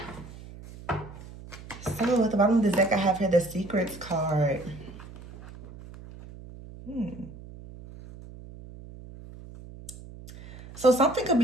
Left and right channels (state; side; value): noise; right; hum, 16 dB below the sound